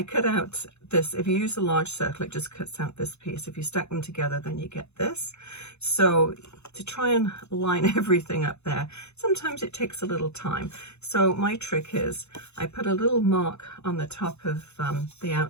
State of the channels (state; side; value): late; right; 0.81 ms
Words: cut out this. If you use a large circle, it just cuts out this piece. If you stack them together, then you get this. So to try and line everything up there, sometimes it takes a little time. So my trick is I put a little mark on the top of the